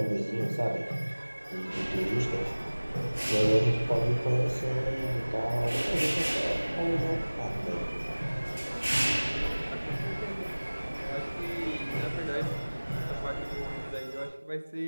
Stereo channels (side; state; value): both; inverted; correlation -1.00